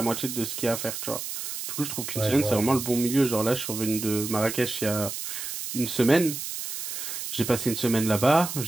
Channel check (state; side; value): noise; right; hiss, 6 dB below the sound